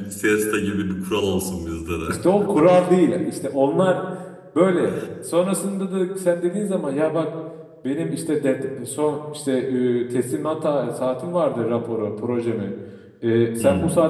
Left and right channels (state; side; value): identical; both; correlation 1.00